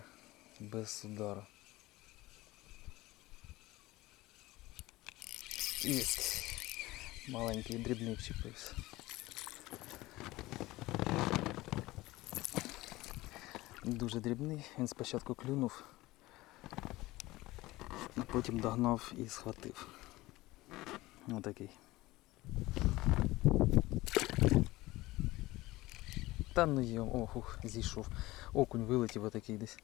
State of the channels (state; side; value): quieter; right; 19.0 dB